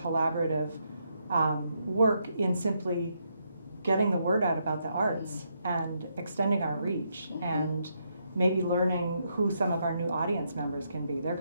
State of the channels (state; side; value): inverted; both; correlation -0.78